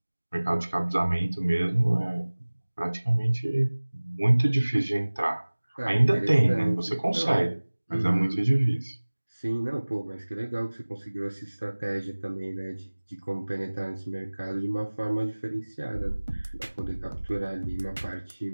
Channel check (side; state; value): both; inverted; correlation -1.00